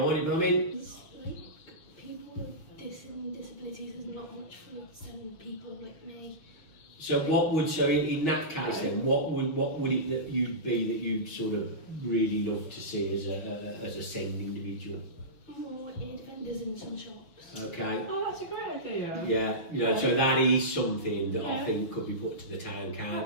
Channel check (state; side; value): late; right; 6.5 ms